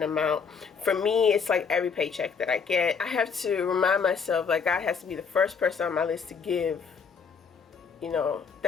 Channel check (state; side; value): quieter; right; 5.9 dB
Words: amount. For me, it's like every paycheck that I get, I have to remind myself, like, God has to be the first person on my list to give,